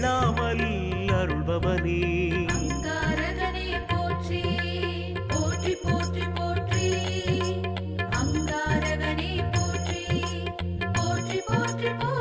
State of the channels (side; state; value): both; identical; correlation 1.00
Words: அருள்பவனே அங்காரகனே போற்றி. போற்றி போற்றி போற்றி. அங்காரகனே போற்றி. போற்றி போற்றி